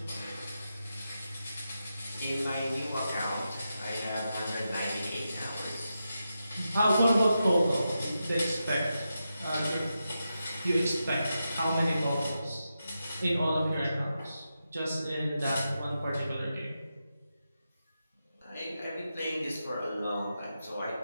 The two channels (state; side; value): inverted; both; correlation -0.88